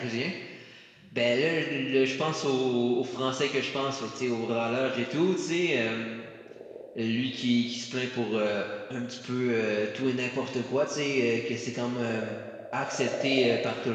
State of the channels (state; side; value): identical; both; correlation 1.00